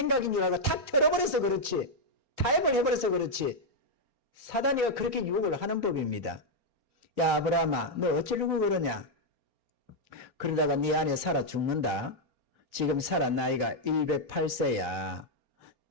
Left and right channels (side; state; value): left; late; 4.0 ms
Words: 줄 알고 탁 틀어버려서 그렇지. 타협을 해버려서 그렇지. 사단이가 그렇게 유혹을 하는 법입니다. 야 아브라함아 너 어쩌려고 그러냐? 그러다가 네 안에 살아 죽는다. 지금 살아 나이가 108세야.